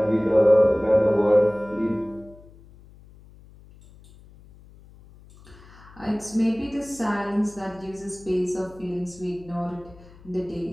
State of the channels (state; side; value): noise; left; hum, 23 dB below the sound